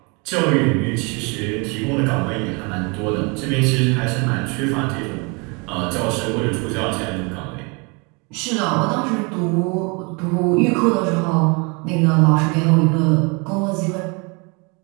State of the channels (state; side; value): quieter; left; 30.8 dB